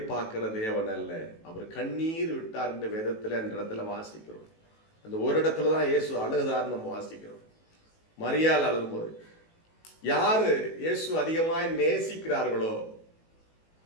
பார்க்கிற தேவன் அல்ல, அவர் கண்ணீர் விட்டார் என்ற வேதத்துல அந்த இடத்துல வாசிக்கிறோம். அந்த ஒரு இடத்துல தான் இயேசு அழுதார் நம்ம வாசிக்கிறோம். மரியாள் அழும்போது, யாரு இயேசு அதிகமாய் நேசிக்கிறார்களோ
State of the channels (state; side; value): late; right; 18 ms